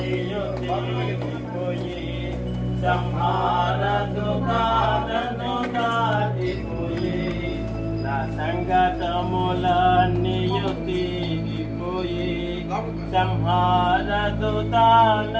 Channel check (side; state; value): both; identical; correlation 1.00